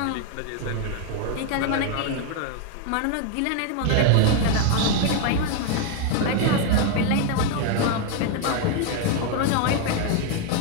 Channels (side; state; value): both; different; correlation 0.01